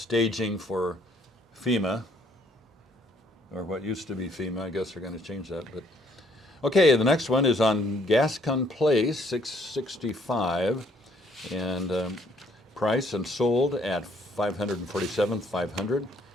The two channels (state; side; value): normal; both; correlation 0.65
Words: for FEMA, or what used to be FEMA. I guess they're going to change that. But okay, the next one is on Gascon Place, 665, and price and sold at $547,500.